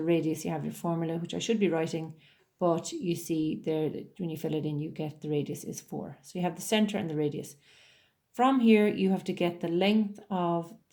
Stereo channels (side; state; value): both; identical; correlation 1.00